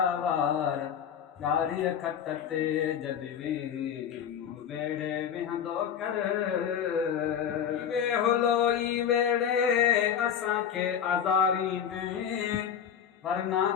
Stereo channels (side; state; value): right; quieter; 8.4 dB